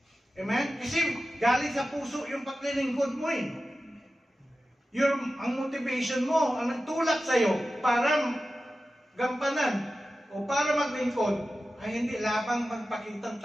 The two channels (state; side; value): normal; both; correlation 0.94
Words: Amen? Kasi galing sa puso yung paglilingkod mo eh. Ang motivation mo, ang nagtulak sa'yo para gampanan o para maglingkod ay hindi labang magpakitang